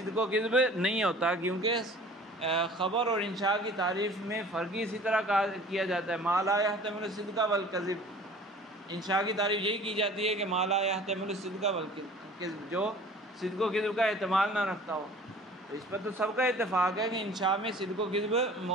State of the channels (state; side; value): normal; both; correlation 0.46